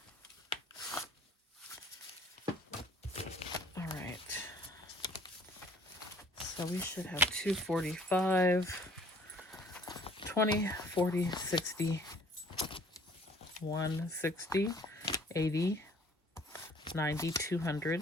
So we should have 245, 20, 40, 60, 160, 80, 90, 200,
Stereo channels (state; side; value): normal; both; correlation 0.56